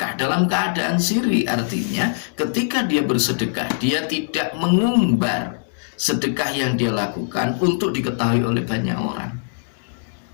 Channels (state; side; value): silent; right; digital silence